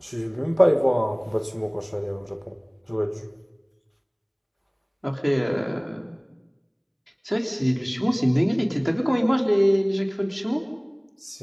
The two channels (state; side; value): identical; both; correlation 1.00